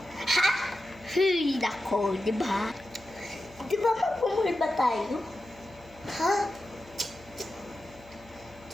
Ha? Hey, nako, di ba? Di ba magpumuli ba tayo? Ha?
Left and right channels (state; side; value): noise; left; hum, 24 dB below the sound